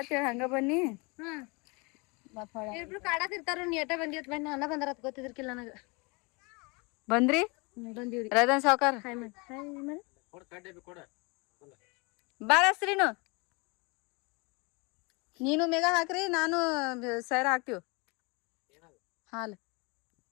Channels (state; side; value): quieter; right; 28.9 dB